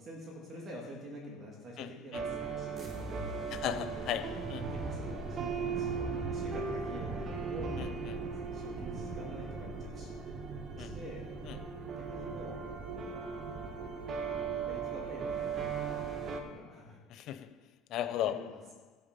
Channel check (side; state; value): both; normal; correlation 0.40